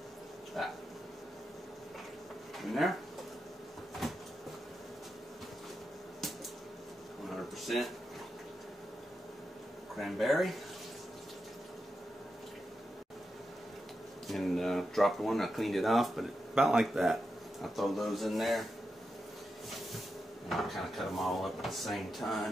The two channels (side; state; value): both; normal; correlation 0.88